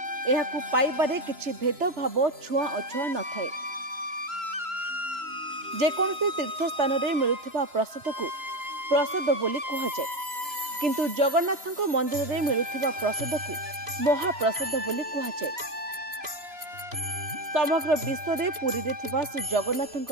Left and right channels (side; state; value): left; late; 2.9 ms